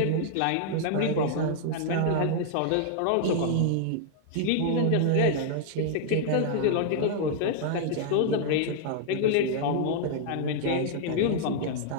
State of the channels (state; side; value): different; both; correlation -0.01